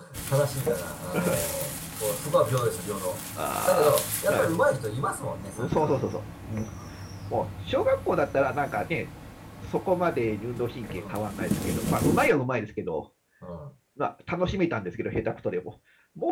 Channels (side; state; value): both; identical; correlation 1.00